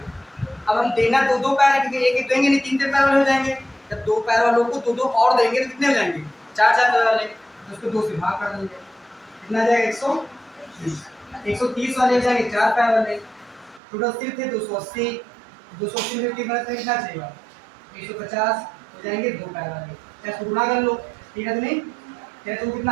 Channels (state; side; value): drops out; left; at 13.8 s